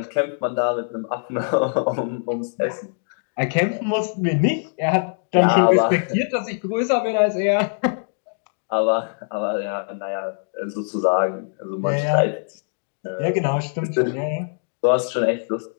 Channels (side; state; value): right; silent; digital silence